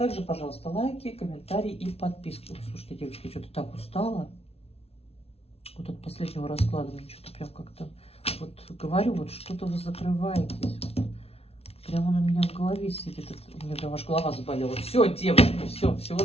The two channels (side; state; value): right; late; 0.29 ms